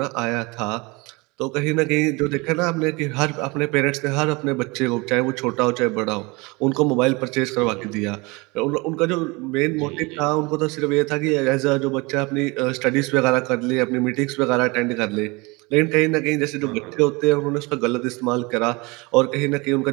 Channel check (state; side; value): quieter; left; 25.7 dB